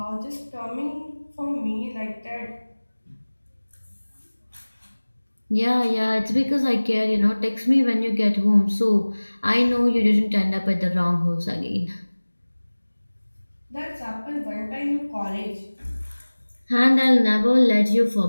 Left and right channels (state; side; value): inverted; both; correlation -1.00